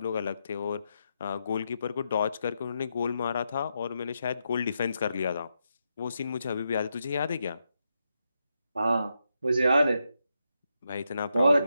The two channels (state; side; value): inverted; both; correlation -0.84